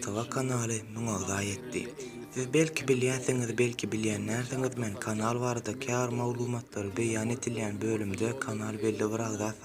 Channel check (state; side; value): identical; both; correlation 1.00